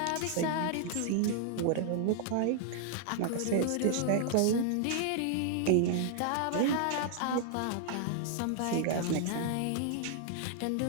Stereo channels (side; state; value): both; different; correlation -0.01